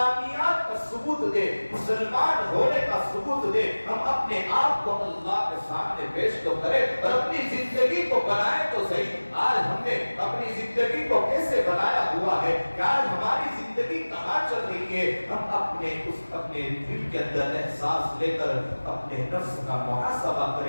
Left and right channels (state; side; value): inverted; both; correlation -1.00